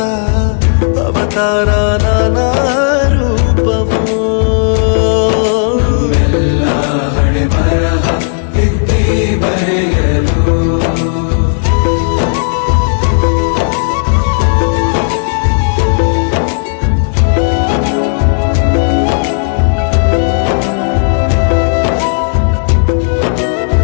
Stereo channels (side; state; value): right; silent; digital silence